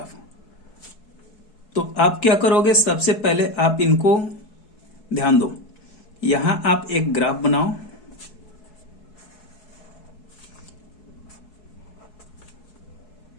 तो आप क्या करोगे? सबसे पहले आप इनको ध्यान दो, यहां आप एक ग्राफ बनाओ।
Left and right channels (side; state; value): right; late; 4.7 ms